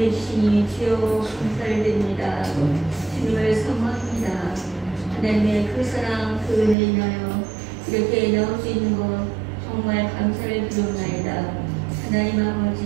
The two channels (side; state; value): left; drops out; at 6.8 s